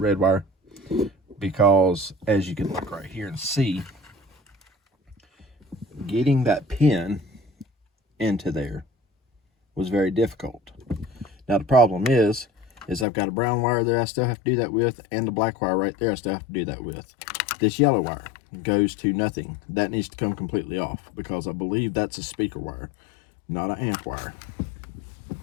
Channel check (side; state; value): right; drops out; at 13.1 s